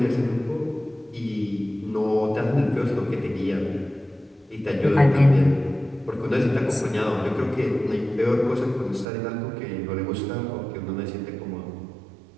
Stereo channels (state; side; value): drops out; left; at 9.1 s